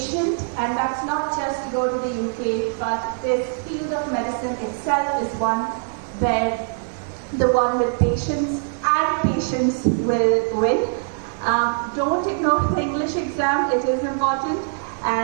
and that's not just to go to the UK, but this field of medicine itself is one where the one with patience will win. Don't ignore the English exam, it is important.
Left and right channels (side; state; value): left; silent; digital silence